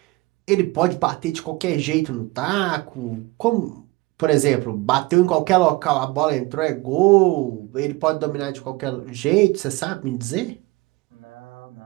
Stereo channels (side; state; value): left; quieter; 21.7 dB